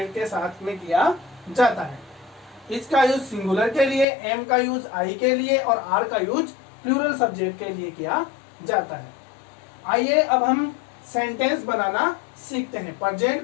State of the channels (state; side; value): drops out; right; at 4.0 s